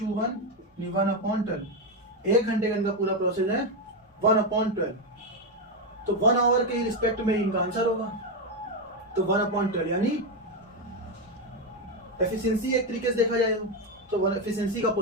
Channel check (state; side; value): normal; both; correlation 0.08